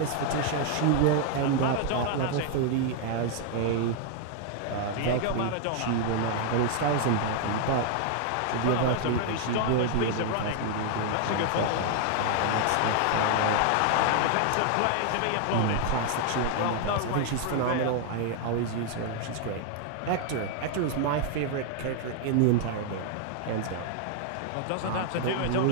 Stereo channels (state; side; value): different; both; correlation 0.00